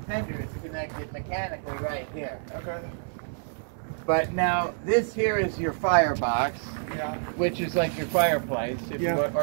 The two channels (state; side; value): silent; left; 59 dB below the other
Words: tender is connected mechanically right here. Okay. But now this here is your firebox, Yeah. which is like your fireplace, if Yeah. you want,